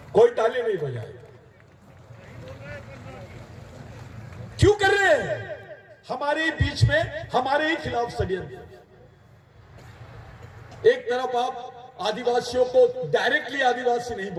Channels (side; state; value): both; identical; correlation 1.00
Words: कोई ताली नहीं बजाए। क्यों कर रहे हैं? हमारे बीच में, हमारे ही खिलाफ षड्यंत्र। एक तरफ आप आदिवासियों को डायरेक्टली आदिवासी नहीं